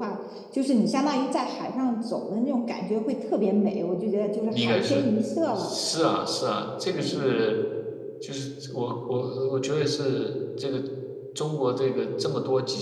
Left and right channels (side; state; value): both; identical; correlation 1.00